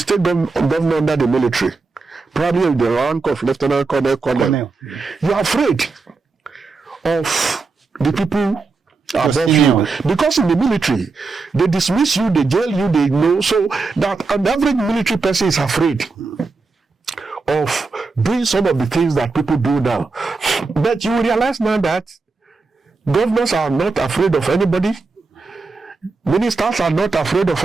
the military, probably in the rank of lieutenant colonel, you're afraid of the people above you, because in the military they dismiss you, they jail you, they know, so that an average military person is afraid of doing some of the things that people do now. But you realize now that governors are not afraid of anybody, ministers are not afraid of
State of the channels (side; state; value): left; quieter; 4.1 dB